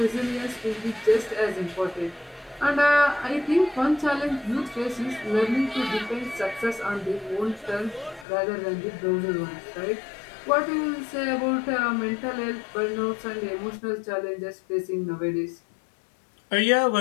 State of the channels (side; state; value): right; drops out; at 8.2 s